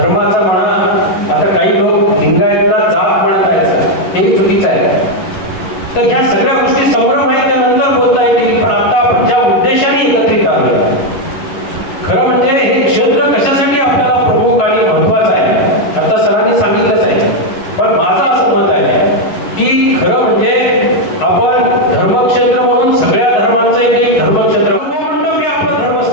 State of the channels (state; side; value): late; right; 11 ms